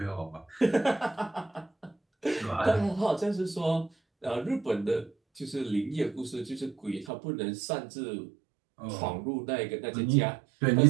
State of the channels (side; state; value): left; drops out; at 7.1 s